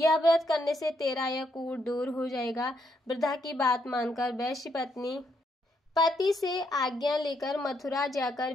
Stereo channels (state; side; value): normal; both; correlation 0.76